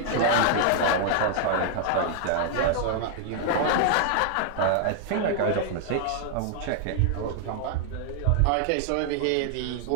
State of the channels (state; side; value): different; both; correlation -0.01